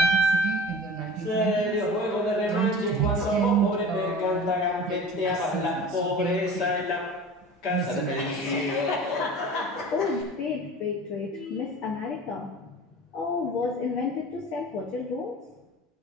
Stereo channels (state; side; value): normal; both; correlation 0.38